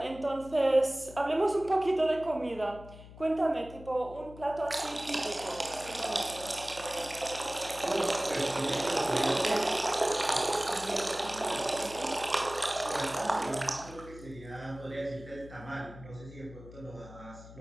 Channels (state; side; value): noise; left; hum, 17 dB below the sound